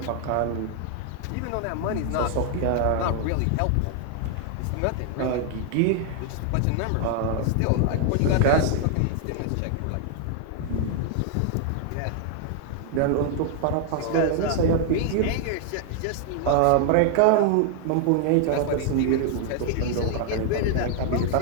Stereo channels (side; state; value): both; different; correlation 0.00